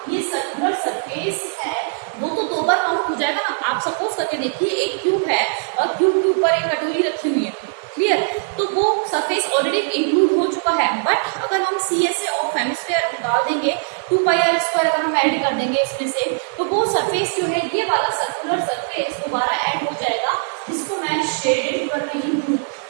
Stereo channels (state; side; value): silent; left; 65 dB below the other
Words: ये सर्कुलर सरफेस है, वो तो 2 बार काउंट हो जाएगा ना। आप सपोज करके देखिए एक क्यूब है और क्यूब के ऊपर एक कटोरी रखी हुई है। क्लियर, तो वो सरफेस ऑलरेडी इंक्लूड हो चुका है, बट अगर हम CSA ऑफ हेमिस्फीयर निकाल देंगे 2πr² अगर हम ऐड कर देंगे इसमें से, तो वो सरफेस जो है, ये वाला सर्कुलर सरफेस दोबारा ऐड हो जाएगा, जिसको मैं शेडेड कर रही हूँ,